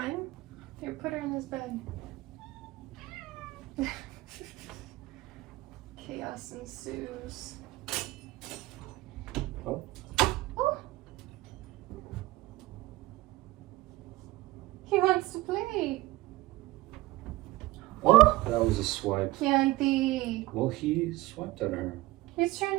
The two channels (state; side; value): quieter; left; 19.1 dB